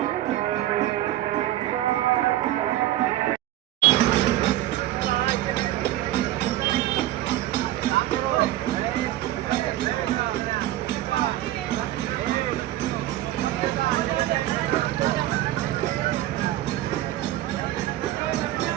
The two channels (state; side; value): quieter; left; 14.6 dB